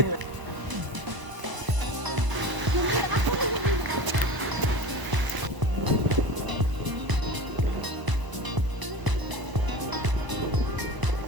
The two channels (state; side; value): late; left; 1.0 ms